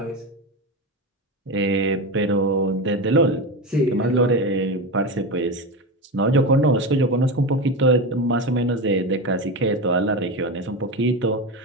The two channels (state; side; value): normal; both; correlation 0.20